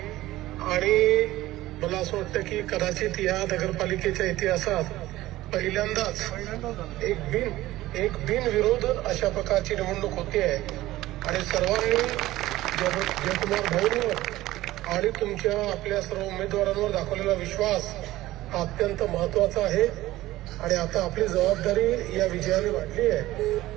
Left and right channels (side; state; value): left; quieter; 16.5 dB